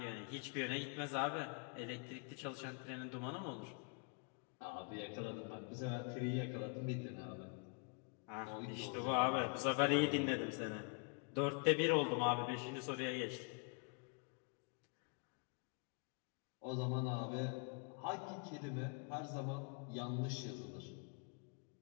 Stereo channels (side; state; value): right; quieter; 37.4 dB